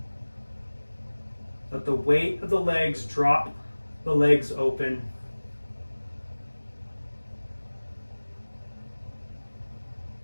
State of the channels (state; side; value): inverted; both; correlation -1.00